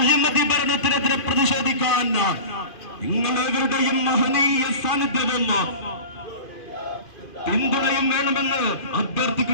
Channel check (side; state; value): right; late; 2.5 ms